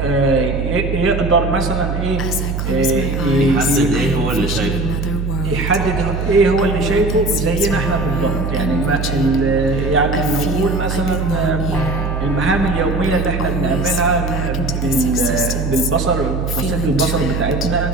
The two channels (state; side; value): noise; right; hum, 2 dB below the sound